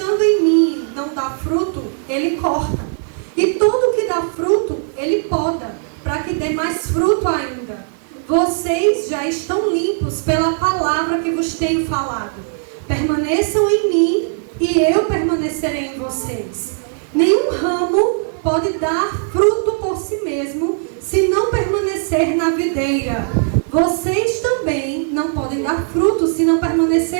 em mim não dá fruto, ele corta. E todo que dá fruto, ele poda, para que dê mais fruto ainda. Vocês já estão limpos pela palavra que vos tenho falado. Permaneçam em mim e eu permanecerei em vocês. Nenhum ramo pode dar fruto por si mesmo, se não permanecer na videira. Vocês também não podem dar fruto se não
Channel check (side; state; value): left; silent; digital silence